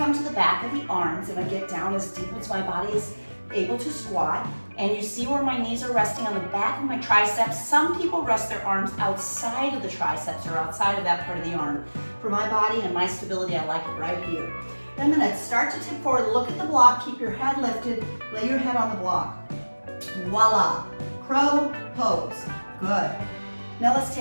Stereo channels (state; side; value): inverted; both; correlation -1.00